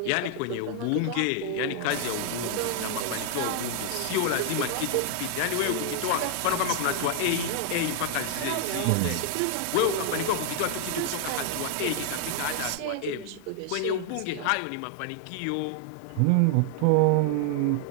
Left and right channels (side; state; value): both; different; correlation 0.00